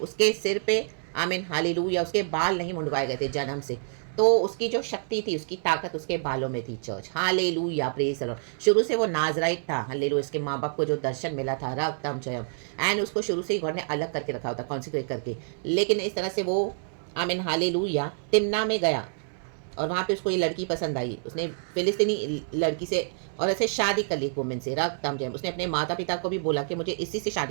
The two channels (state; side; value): silent; left; 60 dB below the other